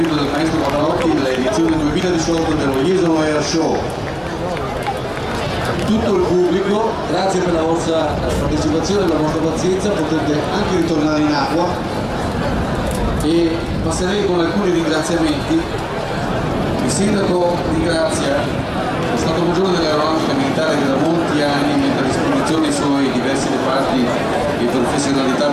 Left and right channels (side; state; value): both; identical; correlation 1.00